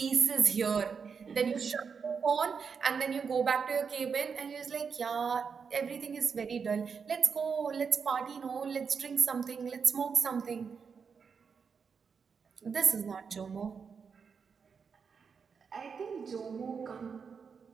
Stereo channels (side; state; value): left; quieter; 6.0 dB